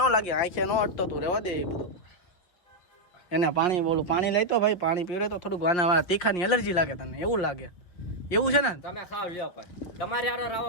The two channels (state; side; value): late; right; 5.6 ms